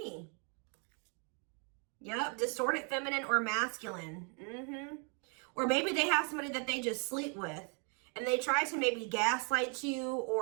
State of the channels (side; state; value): left; quieter; 38.4 dB